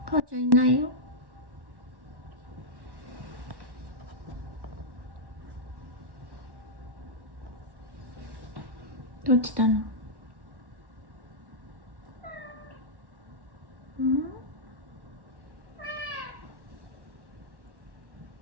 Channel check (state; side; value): late; left; 1.1 ms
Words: 母ちゃんいないよ。どうしたの？